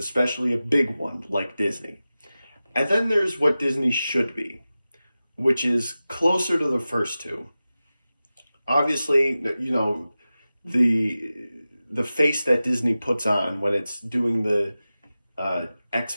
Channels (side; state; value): both; inverted; correlation -0.95